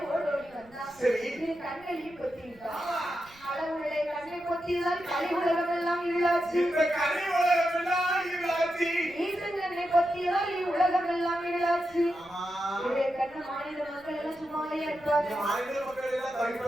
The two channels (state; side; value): noise; right; rumble, 26 dB below the sound